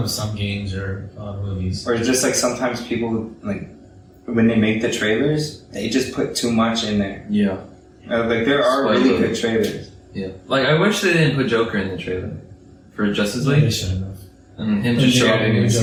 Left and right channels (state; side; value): identical; both; correlation 1.00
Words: with some games or movies. Or just like sometimes people like when they make the trailers, they just put too much in there. Yeah. Like there are really Spoiler. good trailers. Yeah. Like I wish they didn't put Joker in the trailer for Justice They League should have. and him just show up didn't even